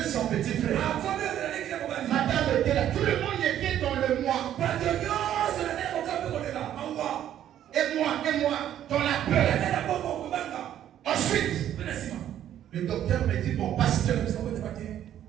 son petit frère. Madame était là. Tout le monde était dans le mois. Et moi, dans la peur. Ensuite, le docteur me dit, mon pasteur,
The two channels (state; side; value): quieter; left; 11.1 dB